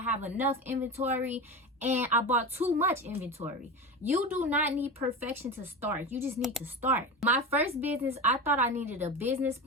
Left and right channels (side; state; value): both; normal; correlation 0.26